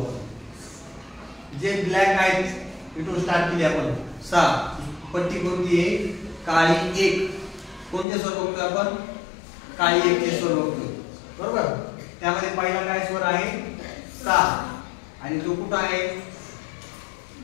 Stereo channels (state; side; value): drops out; right; at 8.1 s